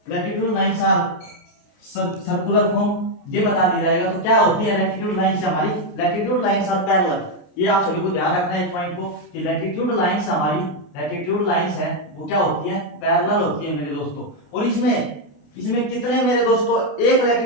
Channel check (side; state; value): right; late; 28 ms